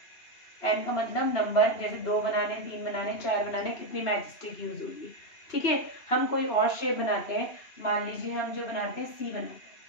n का मतलब नंबर, जैसे 2 बनाने, 3 बनाने, 4 बनाने, कितनी मैचस्टिक यूज होगी। ठीक है, हम कोई और शेप बनाते हैं, मान लीजिए हम जो बनाते हैं सी बनाते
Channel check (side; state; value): right; late; 2.7 ms